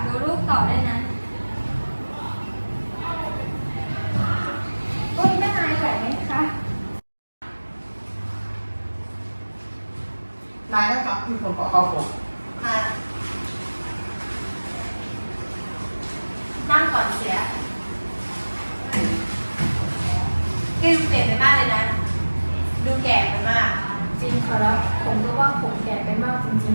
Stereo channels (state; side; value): inverted; both; correlation -1.00